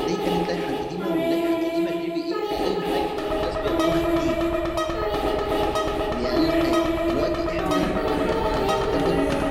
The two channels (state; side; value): identical; both; correlation 1.00